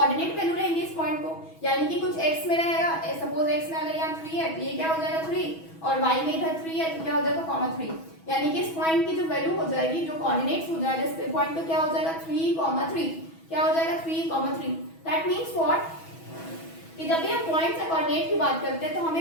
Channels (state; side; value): late; right; 6.2 ms